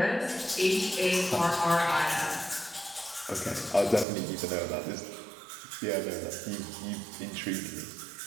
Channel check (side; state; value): left; drops out; at 4.0 s